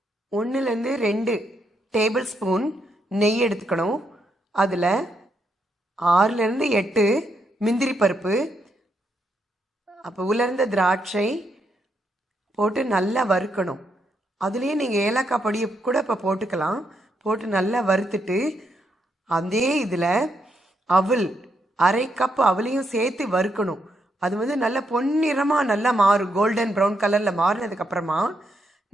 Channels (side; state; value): both; normal; correlation 0.79